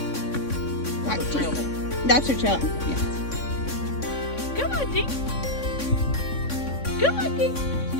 That's her trail. Yes. Come on, Tink. Come on, Tink.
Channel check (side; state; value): right; late; 3.6 ms